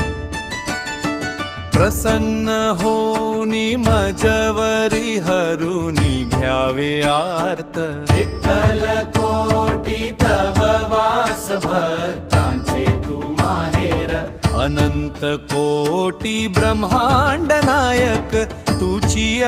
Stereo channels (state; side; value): identical; both; correlation 1.00